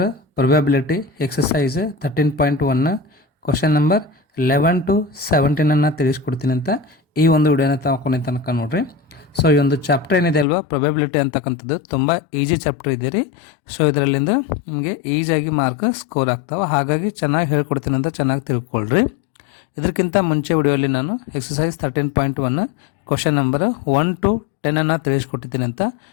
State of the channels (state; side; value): drops out; right; at 10.5 s